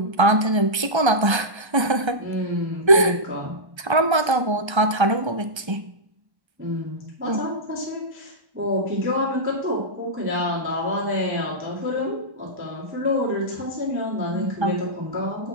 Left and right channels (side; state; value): left; late; 1.3 ms